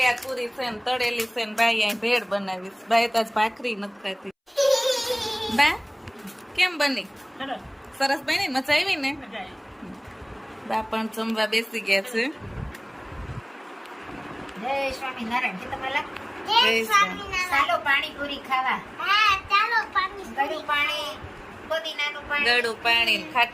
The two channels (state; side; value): identical; both; correlation 1.00